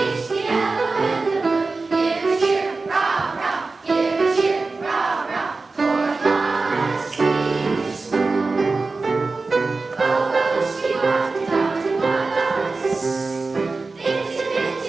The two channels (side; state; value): left; quieter; 3.8 dB